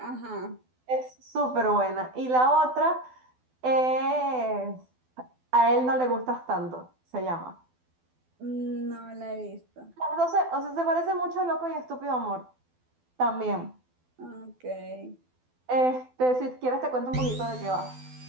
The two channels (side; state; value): left; late; 12 ms